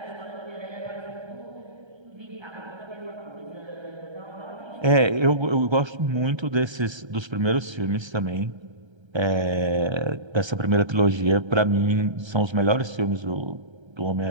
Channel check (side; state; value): left; late; 1.3 ms